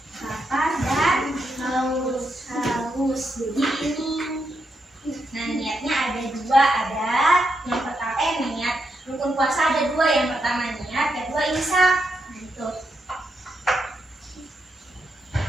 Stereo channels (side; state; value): both; normal; correlation 0.82